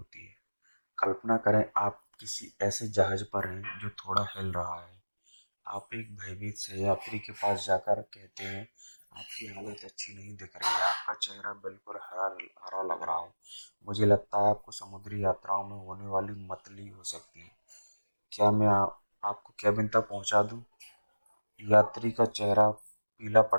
है। कल्पना करें आप किसी ऐसे जहाज पर हैं जो थोड़ा हिल रहा है। आप एक भयभीत सहयात्री के पास जाकर कहते हैं, आपकी हालत अच्छी नहीं दिख रही है, आपका चेहरा बिल्कुल हरा हरा लग रहा है। मुझे लगता है आपको समुद्री यात्राओं में होने वाली मतली हो सकती है। क्या मैं आपको केबिन तक पहुंचा दूं? यात्री का चेहरा पीला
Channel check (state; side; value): inverted; both; correlation -1.00